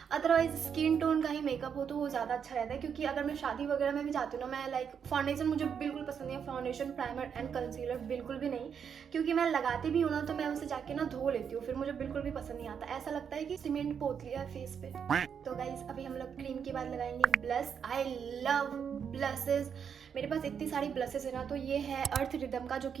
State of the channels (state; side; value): quieter; left; 7.3 dB